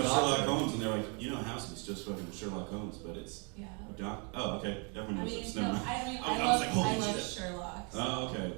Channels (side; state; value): left; quieter; 35.0 dB